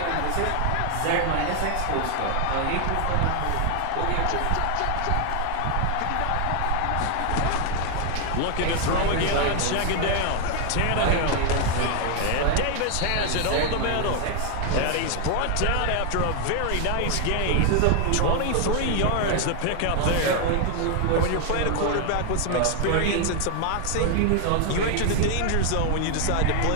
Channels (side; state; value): both; different; correlation 0.00